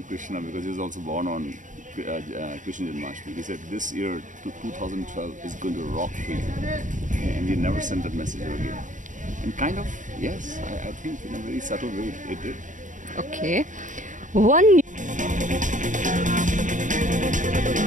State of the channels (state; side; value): late; left; 0.37 ms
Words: Krishna because he was also born on Krishna Janmashtami. He said this year, 2012, is going to rock for you. And he never sent that message again. And kind of, yes, I think in a very subtle way it did. Okay. One